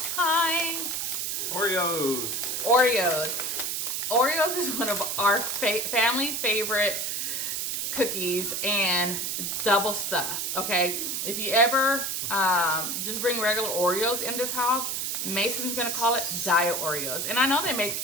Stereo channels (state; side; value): noise; right; hiss, 1 dB below the sound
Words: time. Oreos. Oreos is one of our family favorite cookies, and double stuffed, okay? If you ever just bring regular Oreos in this house, Mason's gonna call it diet Oreos. And I know they make